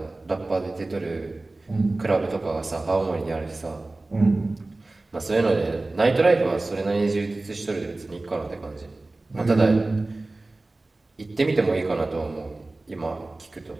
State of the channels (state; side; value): quieter; left; 3.1 dB